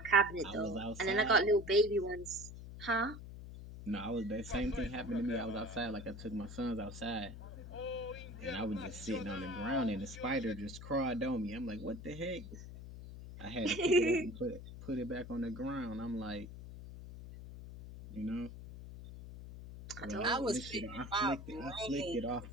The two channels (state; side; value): noise; left; hum, 12 dB below the sound